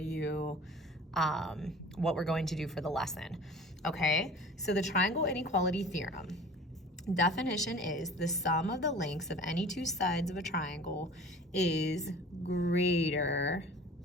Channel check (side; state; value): both; normal; correlation 0.43